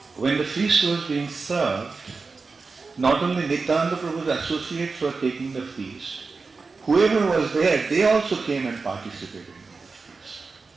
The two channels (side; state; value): left; quieter; 4.3 dB